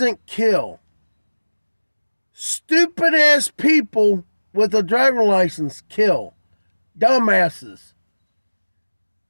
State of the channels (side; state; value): both; inverted; correlation -1.00